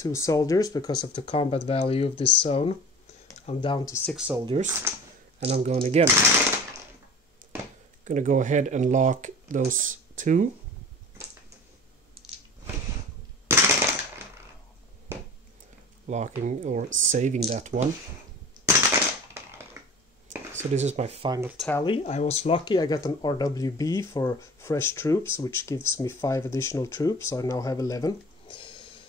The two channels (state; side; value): normal; both; correlation 0.40